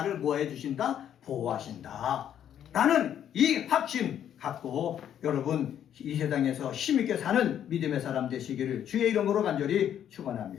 뭐 해주신다? 보호하신다. 라는 이 확신 갖고 여러분 이 세상에서 힘있게 사는 믿음의 사람 되시기를 주의 이름으로 간절히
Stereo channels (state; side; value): quieter; right; 9.9 dB